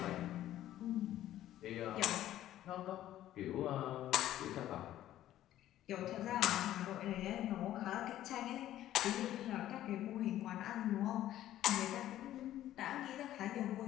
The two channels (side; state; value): right; quieter; 13.1 dB